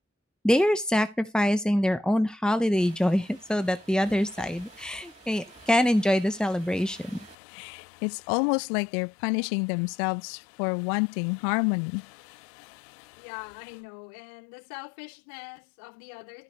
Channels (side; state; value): right; drops out; at 7.4 s